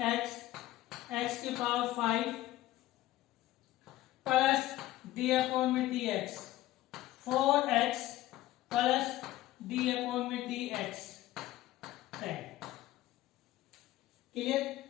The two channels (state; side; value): quieter; right; 15.6 dB